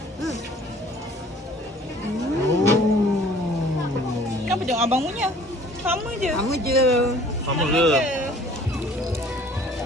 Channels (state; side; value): normal; both; correlation 0.53